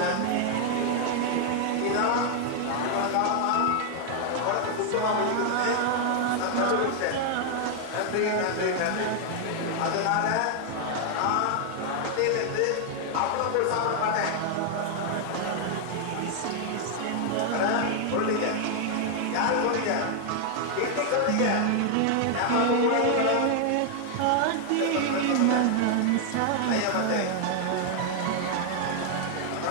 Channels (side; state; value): both; different; correlation 0.00